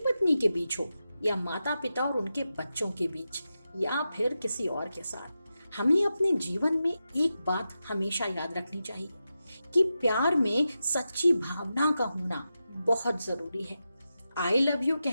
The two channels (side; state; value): both; inverted; correlation -0.90